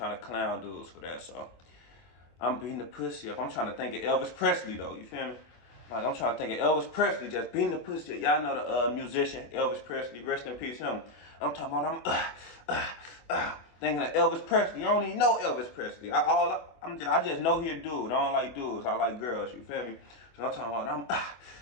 to clown dudes for that. So I'm beating the pussy up. I'm trying to think of Elvis Presley though. You feel me? Like, I'm trying to think of Elvis Presley just beating the pussy up. Y'all know the musician Elvis Presley. Rest in peace, him. I'm talking about thinking of Elvis Presley. I don't even know Elvis Presley. I just know he a dude. I don't like dudes. I like girls. You feel me? So I'm talking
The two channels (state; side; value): late; right; 24 ms